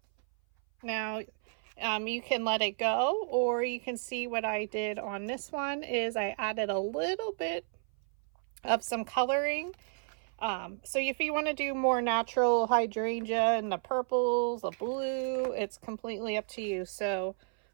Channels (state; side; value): silent; left; 56 dB below the other